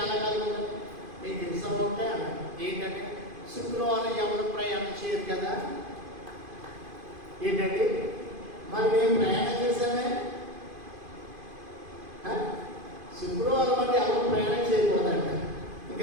ఖాళీగా ఉంటుంది. మీకు ఇష్టం ఉంటే అన్నాడు. ఏంటంటే శుక్రవారం ఎవరు ప్రయాణం చేయరు కదా. ఏంటంటే మరి మేము ప్రయాణం చేశామే, శుక్రవారం అంటే ఎవరు ప్రయాణం చేయకూడదంట.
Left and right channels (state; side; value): late; left; 2.5 ms